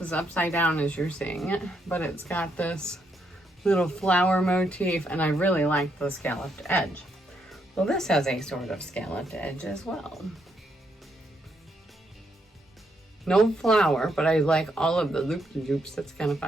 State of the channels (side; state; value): both; normal; correlation 0.77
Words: upside down as you're seeing it, but it's got this little flower motif and I really like the scalloped edge. Well, this has a sort of scalloped edge as well. No flower, but I like all of the loop-de-loops. That's kind of